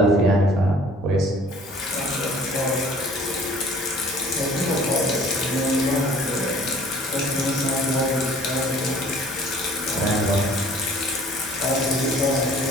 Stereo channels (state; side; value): normal; both; correlation 0.52